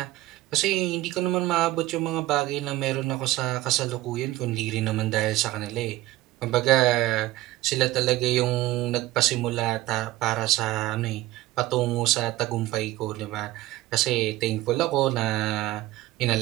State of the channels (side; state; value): left; quieter; 16.7 dB